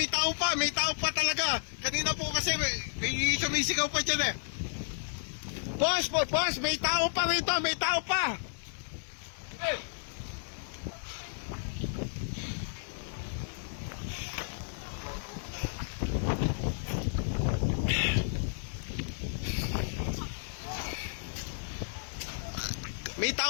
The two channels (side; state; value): right; silent; digital silence